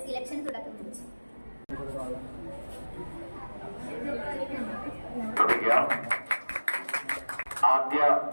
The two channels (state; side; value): inverted; both; correlation -1.00